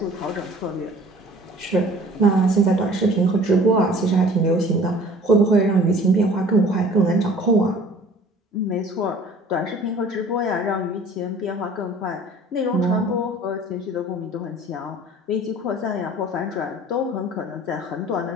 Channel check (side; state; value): both; normal; correlation 0.48